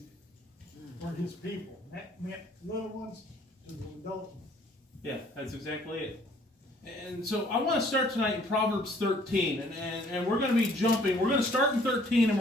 for his people. That meant little ones to the adult ones. Yeah, that's exactly it. And so I want to start tonight in Proverbs 13. And we're going to be jumping. We're going to start in 13 and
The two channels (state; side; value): normal; both; correlation 0.59